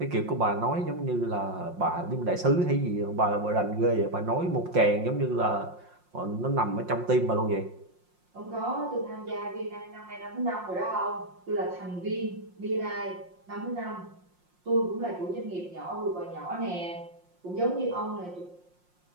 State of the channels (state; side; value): late; left; 5.6 ms